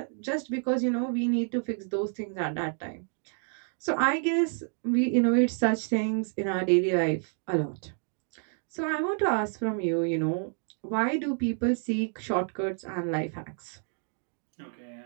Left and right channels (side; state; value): left; silent; 56 dB below the other